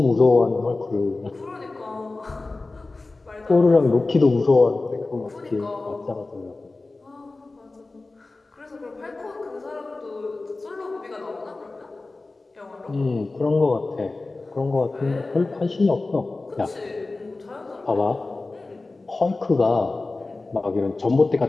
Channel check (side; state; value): right; quieter; 3.3 dB